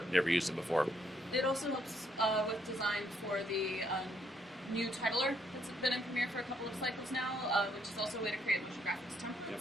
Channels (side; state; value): both; normal; correlation 0.72